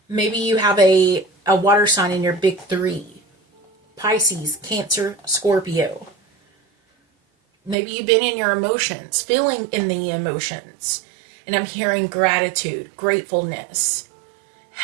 Maybe you have a water sign in your big three. Pisces, Cancer, Scorpio. Maybe you've been in your emotions, feeling in the emotions. And I'm hearing gratitude, gratefulness,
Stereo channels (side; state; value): left; drops out; at 7.8 s